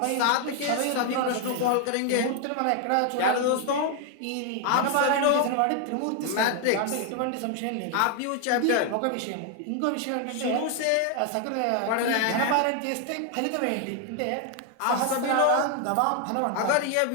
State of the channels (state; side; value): different; both; correlation 0.00